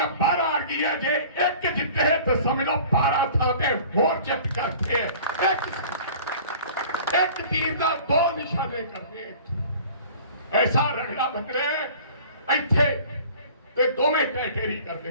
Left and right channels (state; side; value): inverted; both; correlation -0.46